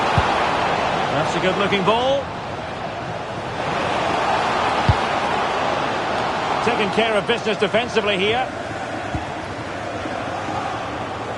That's a good-looking ball. Taking care of business defensively here.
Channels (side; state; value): both; identical; correlation 1.00